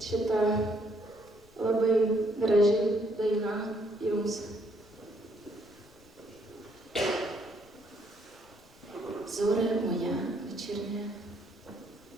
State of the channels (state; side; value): noise; left; rumble, 27 dB below the sound